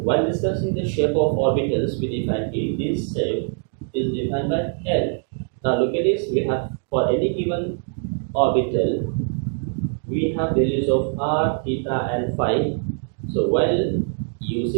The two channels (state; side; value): silent; left; 63 dB below the other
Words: discussing the shape of orbitals, we define this shape is defined by L. Now look at this, we have for any given orbital, we have values of r, theta and phi. So while